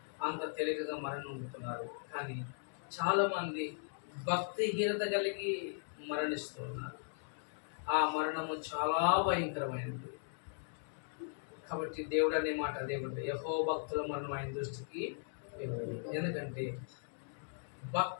అంత తేలికగా మరణం పొందుతున్నారు. కానీ చాలామంది భక్తిహీనత కలిగి మరణిస్తున్నారు. ఆ మరణము చాలా భయంకరమైనది. కాబట్టి దేవుడు అనే మాట దేవుడు, యెహోవా భక్తుల మరణం ఆయన దృష్టికి ఎందుకంటే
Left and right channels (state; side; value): silent; right; digital silence